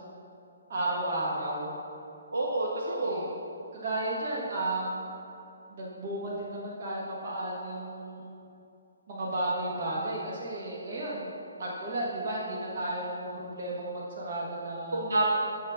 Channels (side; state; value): both; inverted; correlation -0.64